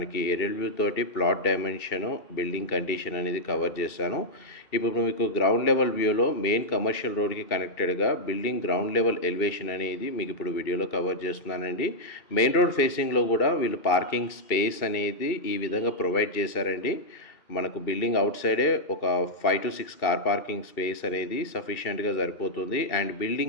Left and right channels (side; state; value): right; late; 2.7 ms